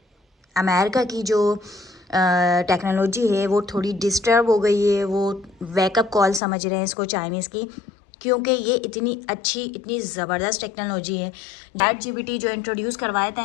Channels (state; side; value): drops out; right; at 6.4 s